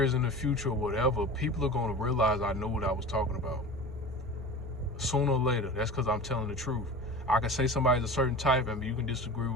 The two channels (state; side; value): normal; both; correlation 0.34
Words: in the future or whatever, people are going to realize I know what I was talking about. Sooner or later. That's because I'm telling the truth. I can say somebody's a certain type, and you can disagree